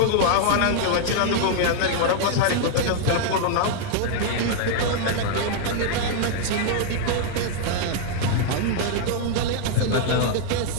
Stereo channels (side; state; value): both; different; correlation 0.00